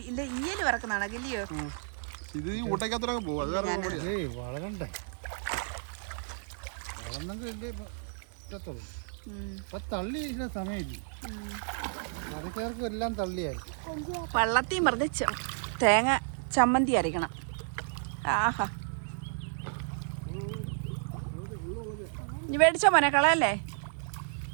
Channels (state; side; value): silent; left; digital silence